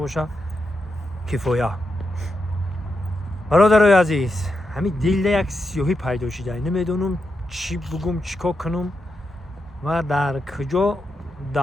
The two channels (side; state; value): both; normal; correlation 0.85